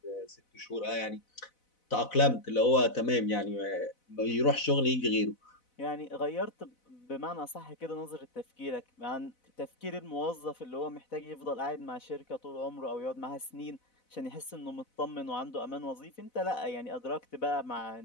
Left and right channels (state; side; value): late; right; 4.0 ms